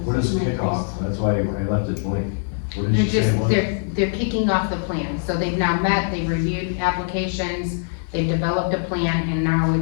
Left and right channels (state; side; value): silent; right; digital silence